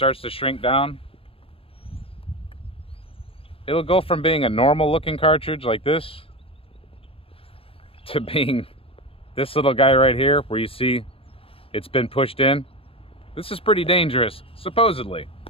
to shrink down. It'll go from being a normal looking cartridge like this to being this little guy right here where you see it's been pushed in. This is pretty dangerous, supposedly.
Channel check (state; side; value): late; right; 0.27 ms